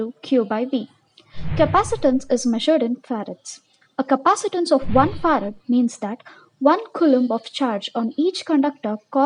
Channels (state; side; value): identical; both; correlation 1.00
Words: Q by V. Capacitance is measured in farads. A capacitance of 1 farad means that 1 coulomb of charge on each conductor